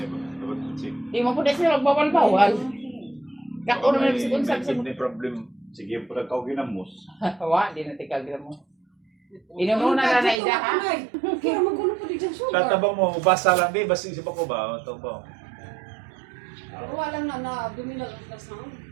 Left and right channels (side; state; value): left; drops out; at 10.4 s